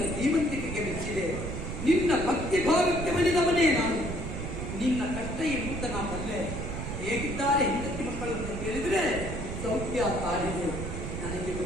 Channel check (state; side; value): noise; right; rumble, 5 dB below the sound